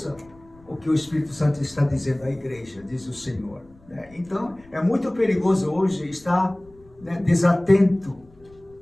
o que o Espírito Santo está dizendo à igreja, diz o Senhor, né? Então, é muito perigoso hoje estar, né, desatento,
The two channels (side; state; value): left; noise; rumble, 27 dB below the sound